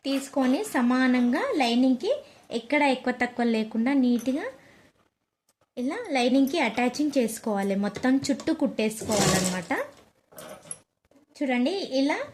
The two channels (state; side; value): identical; both; correlation 1.00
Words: తీసుకొని సమానంగా లైనింగ్కి ఎక్కడ ఎక్కువ తక్కువ లేకుండా నీట్గా ఇలా లైనింగ్కి అటాచింగ్ చేసుకోవాలి. మొత్తం చుట్టూ కుట్టేసుకోవాలన్నమాట. చూడండి, ఇలా